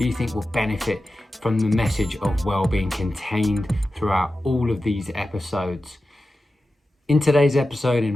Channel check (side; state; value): both; normal; correlation 0.93